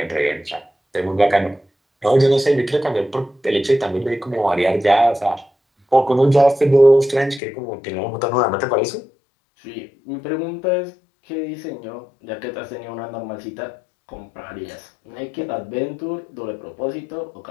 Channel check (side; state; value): right; drops out; at 7.4 s